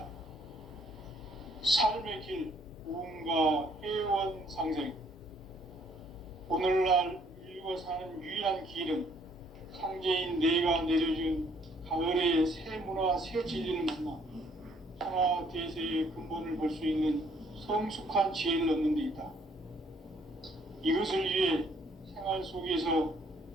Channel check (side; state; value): both; normal; correlation 0.64